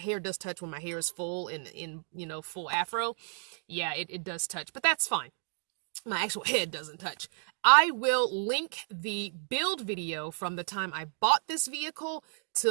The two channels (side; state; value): left; silent; digital silence